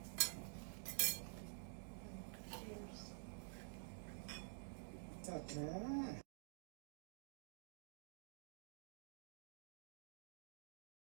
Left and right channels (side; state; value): left; silent; digital silence